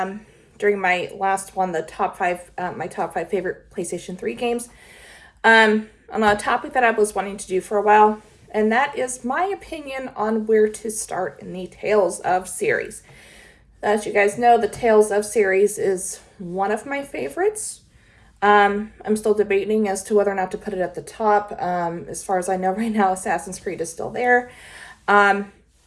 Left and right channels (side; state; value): both; identical; correlation 1.00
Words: during my last one, the my top five favorite PlayStation 3 games, on a topic that I was wanting to do for a while, and that is my opinion on where to start in the Tales of series. As you guys know, the Tales of series is one of my favorites. I'm still debating as to whether or not to put it at the top. As far as I know right now, Assassin's Creed is still there. Ubisoft